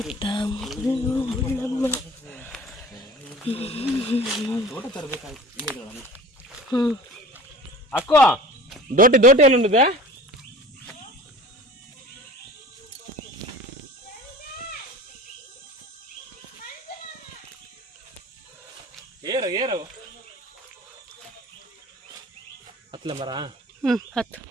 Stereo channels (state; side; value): normal; both; correlation 0.41